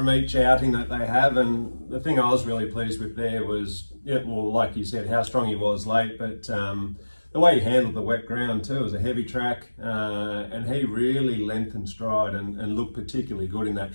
each outing that they have. And the thing I was really pleased with there was, like you said, how strong he was late, but the way he handled the wet ground too. It was a heavy track, and he really lengthened stride and looked particularly good in that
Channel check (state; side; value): inverted; both; correlation -1.00